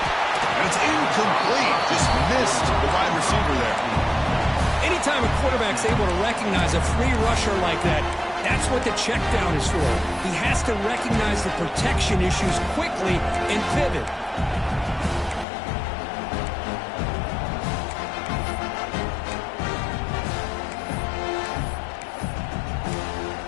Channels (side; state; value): right; drops out; at 15.5 s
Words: it's incomplete. Just missed the wide receiver there. Anytime a quarterback's able to recognize a free rusher like that, that's what the check down is for. He has to recognize the protection issues quickly and pivot.